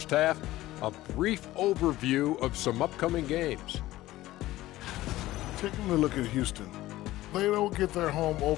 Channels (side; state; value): right; quieter; 16.4 dB